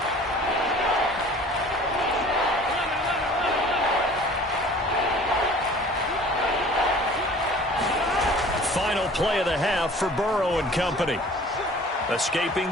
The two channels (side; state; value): both; normal; correlation 0.47